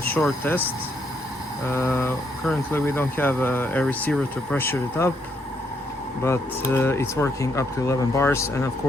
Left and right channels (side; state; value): both; normal; correlation 0.74